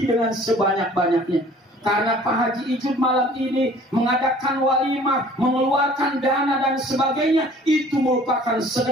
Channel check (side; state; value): both; normal; correlation 0.51